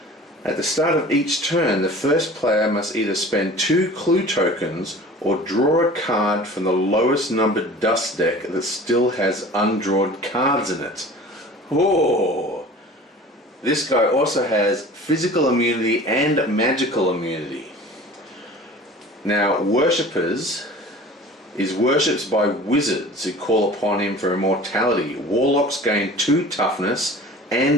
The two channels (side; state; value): both; normal; correlation 0.42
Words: At the start of each turn, the first player must either spend 2 clue tokens or draw a card from the lowest numbered dust deck that still has undrawn cards in it. Oh! This guy also has physical immunity and magical immunity. Now, Worshippers is worshipped by wizards who call upon him for immortality. Warlocks gain 2 toughness